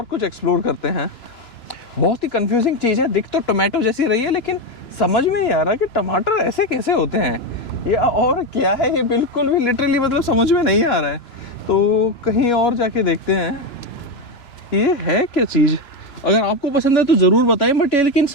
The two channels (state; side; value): late; right; 2.9 ms